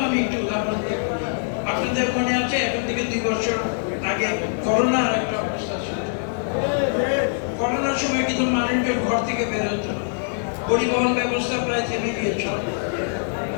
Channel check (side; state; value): right; silent; digital silence